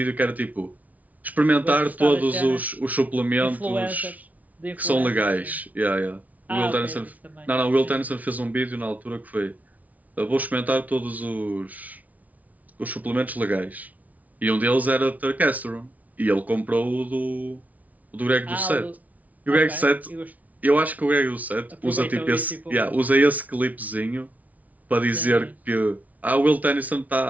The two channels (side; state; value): left; late; 0.072 ms